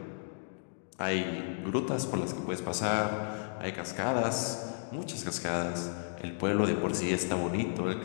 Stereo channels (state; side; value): silent; right; digital silence